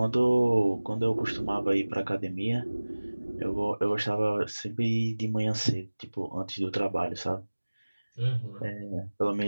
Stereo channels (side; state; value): both; inverted; correlation -1.00